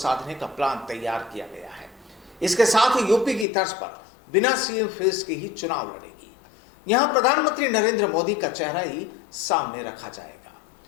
का प्लान तैयार किया गया है। इसके साथ ही यूपी की तर्ज पर बिना सीएम फेस के ही चुनाव लड़ेगी। यहां प्रधानमंत्री नरेंद्र मोदी का चेहरा ही सामने रखा जाएगा।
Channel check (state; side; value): drops out; right; at 3.5 s